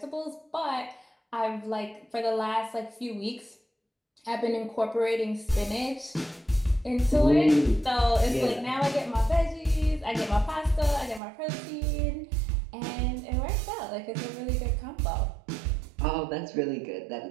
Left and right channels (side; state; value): left; drops out; at 11.2 s